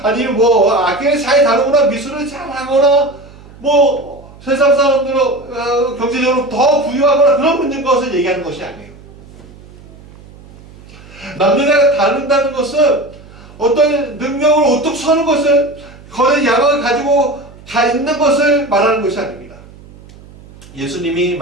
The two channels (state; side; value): noise; right; hum, 21 dB below the sound